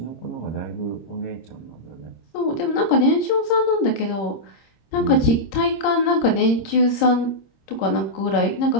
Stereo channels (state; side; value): late; right; 26 ms